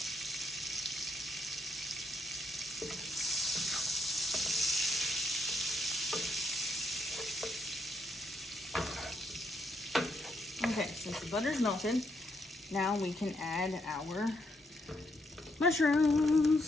Okay, since the butter's melted, now we can add our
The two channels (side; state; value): both; normal; correlation 0.77